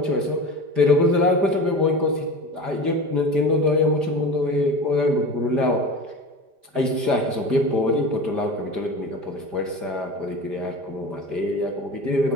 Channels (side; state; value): left; late; 5.0 ms